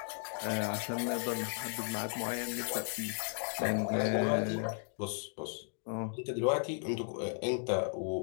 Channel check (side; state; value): right; silent; 54 dB below the other